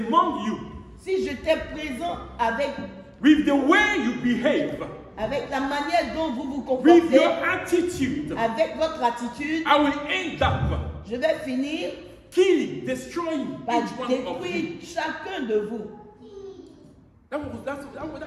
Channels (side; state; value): both; identical; correlation 1.00